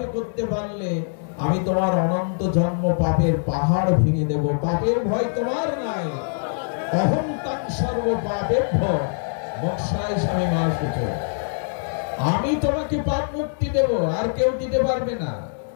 করতে পারলে, আমি তোমার অনন্ত জন্ম পাপের পাহাড় ভেঙে দেব। পাপের ভয় তোমার নাই। অহং তাং সর্ব পাপেভ্য মোক্ষায় স্বামী মা শুচ। আমি তোমাকে পাপ মুক্তি দেব, আর কেউ দিতে পারবে না।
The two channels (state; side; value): silent; right; digital silence